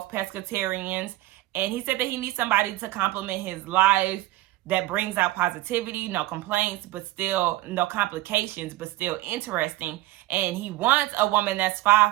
pescatarians. And he said that he needs somebody to complement his life that brings out positivity, no complaints, but still no complications, but still interesting. And he wants a woman that's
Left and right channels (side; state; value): left; quieter; 17.6 dB